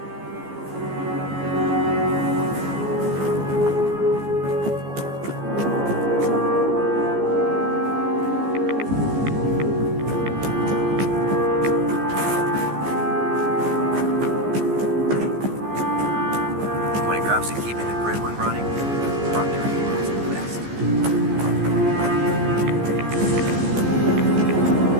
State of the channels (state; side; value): late; left; 15 ms